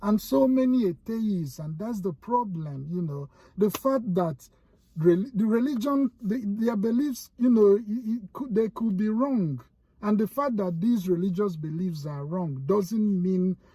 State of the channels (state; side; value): identical; both; correlation 1.00